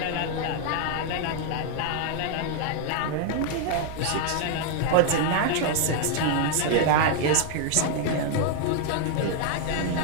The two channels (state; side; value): different; both; correlation 0.00